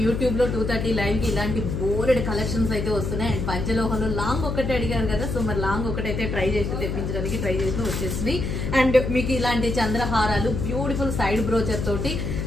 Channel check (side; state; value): left; noise; hum, 2 dB below the sound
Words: యూట్యూబ్ లో 2:30 లైవ్ కి ఇలాంటి బోర్డ్ కలెక్షన్స్ అయితే వస్తున్నాయి. అండ్ పంచలోహంలో లాంగ్ ఒకటే అడిగారు కదా, సో మరి లాంగ్ ఒకటైతే ట్రై చేసి తెప్పించడానికి ట్రై చేసి వచ్చేసినాయి. అండ్ మీకు ఇలాంటి చంద్రహారాలు బ్యూటిఫుల్ సైడ్ బ్రోచర్ తోటి